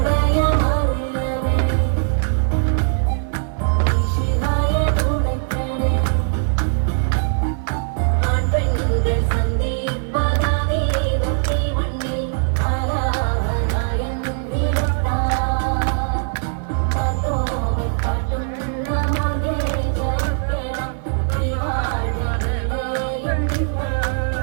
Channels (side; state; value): left; silent; 57 dB below the other